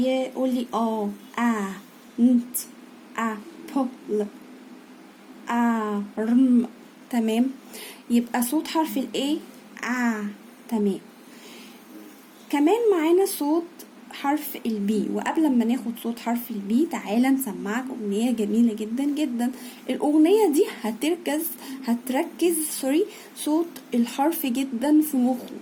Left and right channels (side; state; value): both; identical; correlation 1.00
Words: لي ant apple arm. تمام. يبقى صوت حرف ال A تمام. كمان معانا صوت حرف البي. وقبل ما ناخد صوت حرف البي تعالى نسمعك اغنية جميلة جدا جدا. الاغنية دي هتركز صوت الحرف جدا في مخه،